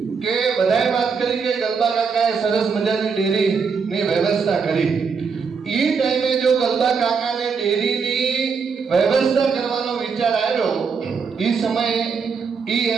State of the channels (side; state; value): left; quieter; 5.6 dB